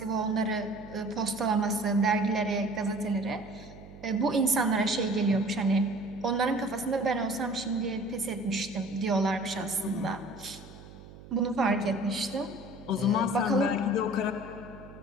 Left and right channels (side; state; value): right; noise; hum, 18 dB below the sound